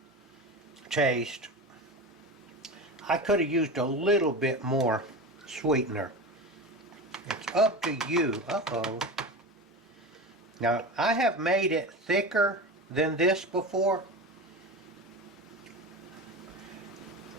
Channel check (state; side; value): normal; both; correlation 0.26